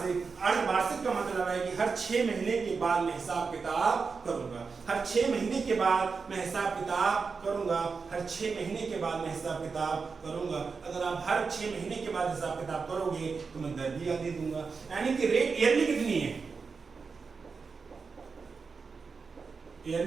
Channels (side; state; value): left; quieter; 5.0 dB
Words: अर्धवार्षिक का मतलब है कि हर 6 महीने के बाद मैं हिसाब किताब करूंगा, हर 6 महीने के बाद मैं हिसाब किताब करूंगा, हर 6 महीने के बाद मैं हिसाब किताब करूंगा। अगर आप हर 6 महीने के बाद हिसाब किताब करोगे तो मैं दर भी दे दूंगा। यानी कि रेट ईयरली कितनी है?